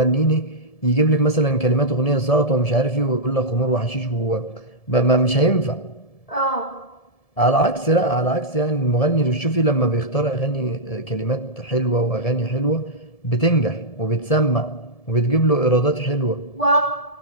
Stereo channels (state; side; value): late; right; 1.7 ms